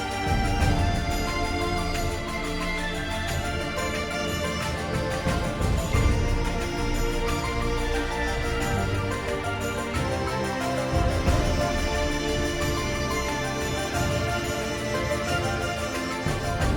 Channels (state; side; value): identical; both; correlation 1.00